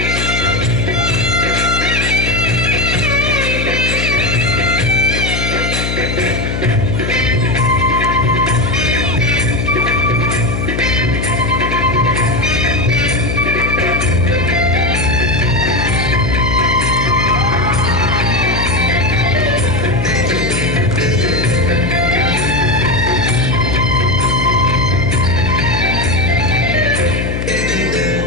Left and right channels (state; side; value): noise; left; hum, 3 dB below the sound